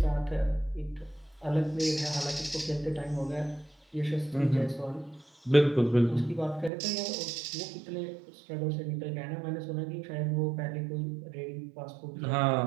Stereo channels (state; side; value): drops out; left; at 6.7 s